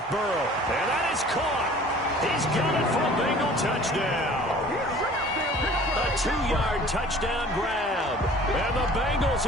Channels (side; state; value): both; normal; correlation 0.48